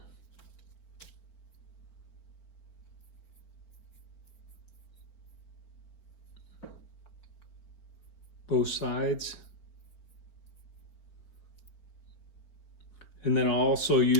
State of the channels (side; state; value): right; late; 4.4 ms